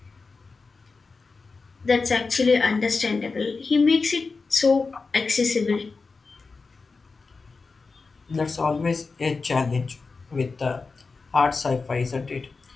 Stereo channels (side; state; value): right; quieter; 4.3 dB